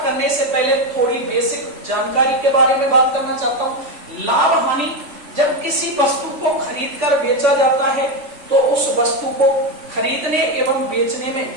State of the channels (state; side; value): late; left; 3.5 ms